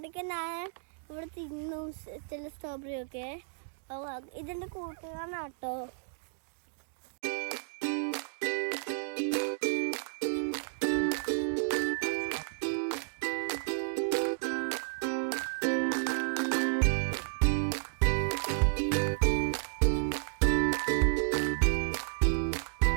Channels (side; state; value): left; silent; digital silence